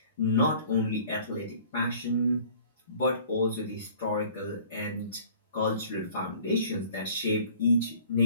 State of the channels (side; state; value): both; inverted; correlation -0.50